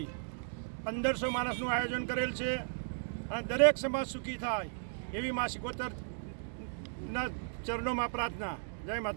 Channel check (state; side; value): silent; left; digital silence